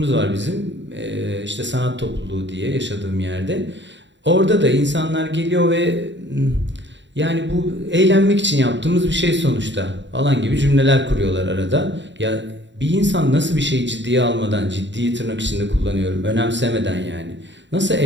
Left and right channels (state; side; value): late; left; 0.53 ms